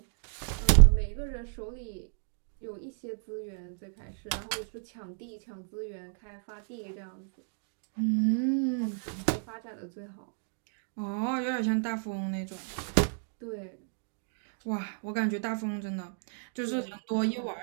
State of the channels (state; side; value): silent; left; digital silence